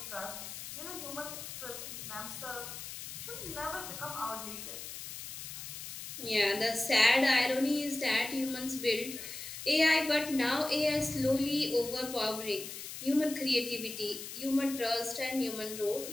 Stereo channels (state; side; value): noise; left; hiss, 9 dB below the sound